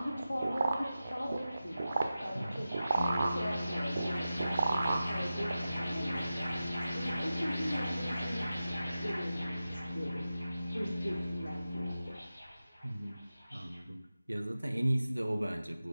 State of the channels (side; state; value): both; inverted; correlation -0.93